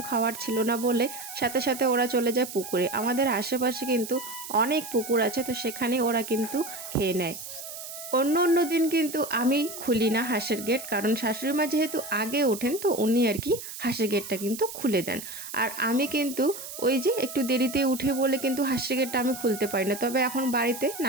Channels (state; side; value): noise; right; hiss, 10 dB below the sound